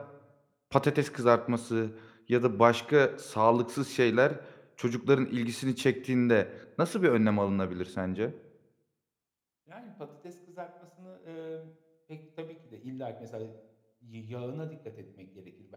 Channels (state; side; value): identical; both; correlation 1.00